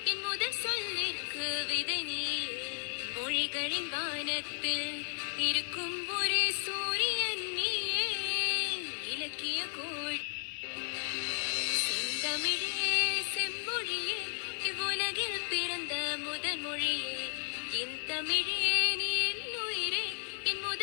என் முதல் சொல்லிற்கு விதை நீயே. மொழிகளின் வானத்தில் இருக்கும் ஒரே சூரியன் நீயே. இலக்கிய கோள் தமிழே செம்மொழியே, இவ்வுலகில் பிறந்த முதல் மொழியே. என் தமிழே நீ என் உயிரே, என்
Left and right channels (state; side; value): silent; right; digital silence